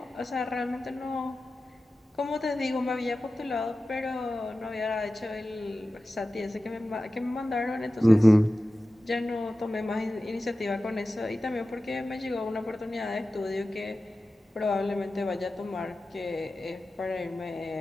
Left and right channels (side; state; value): both; normal; correlation 0.94